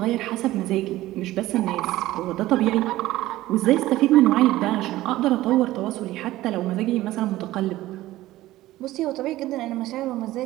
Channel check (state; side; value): quieter; left; 16.2 dB